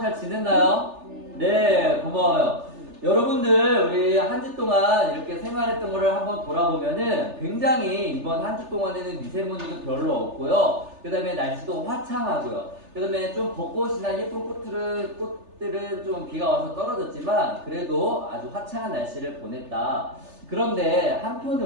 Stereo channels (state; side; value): late; left; 3.4 ms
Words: 지냈나요? 네, 고마워요. 여러분들 우리 한 주 동안 이렇게 생활했던 거를 한번 돌아보면은 굉장히 이번 한 주 동안에는 미세먼지도 별로 없고요. 그 다음에 날씨도 화창하고요. 그 다음에 좀 벚꽃이나 예쁜 꽃들은 좀 비가 와서 떨어졌지만 그래도 아주 화창한 날씨를 보냈다. 그런데